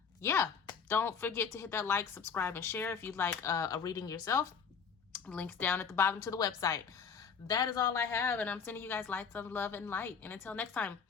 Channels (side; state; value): right; quieter; 6.3 dB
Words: Yeah, don't forget to hit that like, subscribe, and share if you'd like a reading yourself. Links down at the bottom to the website. That is all I have, and I'm sending you guys lights of love and light. And until next time,